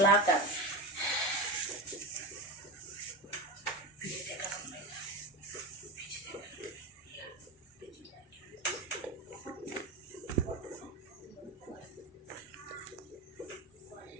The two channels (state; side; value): normal; both; correlation 0.21